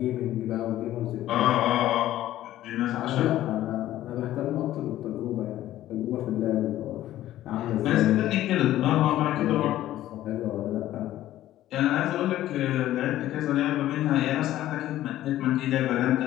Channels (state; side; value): quieter; right; 13.8 dB